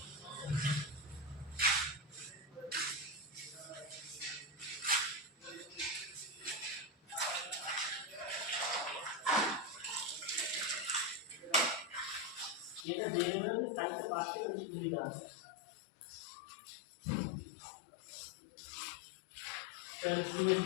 এটা দিয়ে দেবে, সাইডটা বাড়তে তো সুবিধা আছে। তাহলে তুমি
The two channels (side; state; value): right; drops out; at 12.9 s